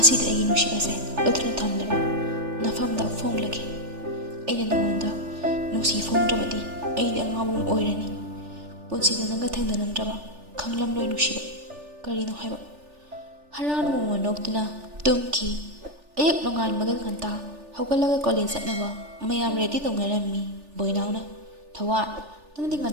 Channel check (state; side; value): late; left; 3.4 ms